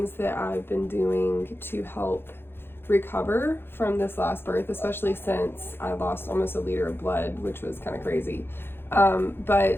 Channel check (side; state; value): right; late; 0.11 ms